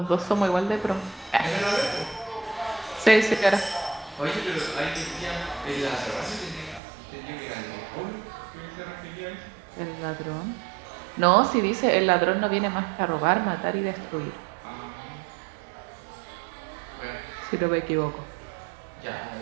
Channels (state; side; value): drops out; left; at 6.8 s